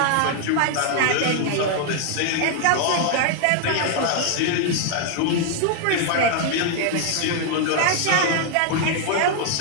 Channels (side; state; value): both; different; correlation 0.00